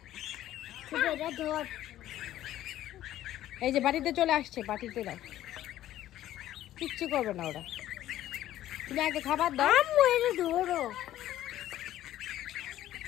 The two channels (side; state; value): right; quieter; 13.3 dB